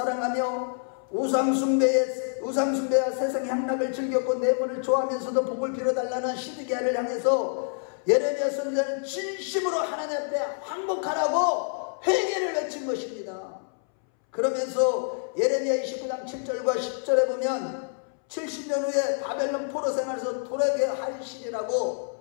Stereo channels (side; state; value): right; silent; 60 dB below the other